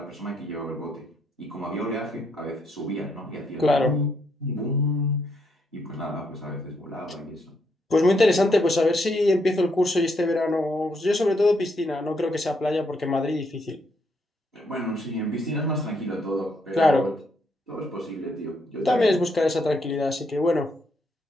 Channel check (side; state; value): both; normal; correlation 0.76